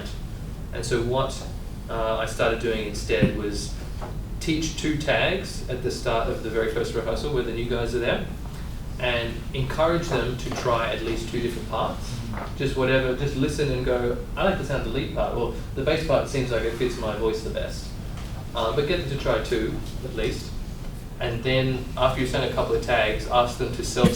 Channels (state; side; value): identical; both; correlation 1.00